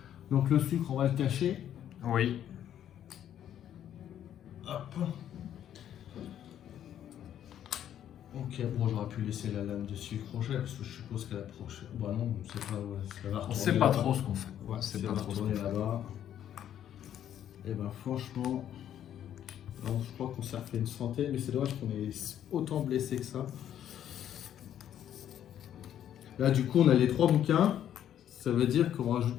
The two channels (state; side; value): quieter; right; 10.5 dB